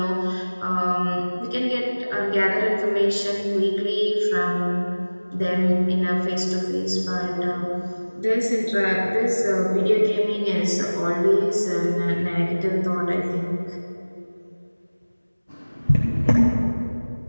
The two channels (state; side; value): inverted; both; correlation -1.00